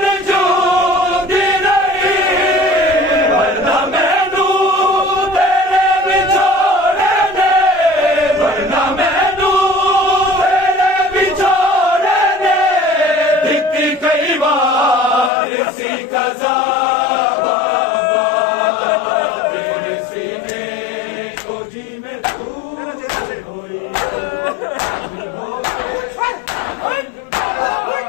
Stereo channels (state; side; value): drops out; right; at 15.3 s